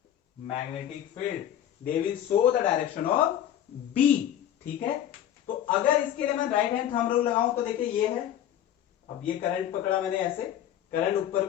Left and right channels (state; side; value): quieter; right; 11.0 dB